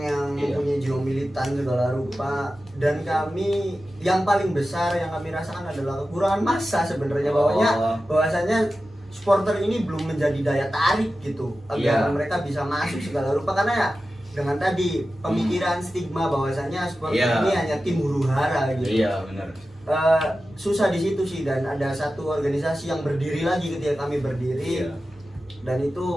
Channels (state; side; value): normal; both; correlation 0.93